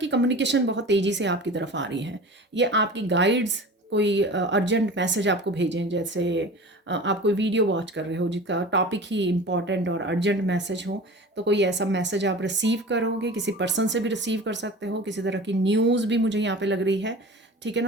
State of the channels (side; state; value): both; normal; correlation 0.37